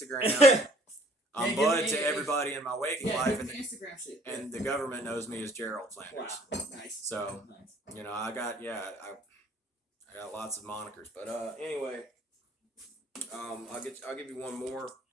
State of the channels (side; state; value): both; normal; correlation 0.57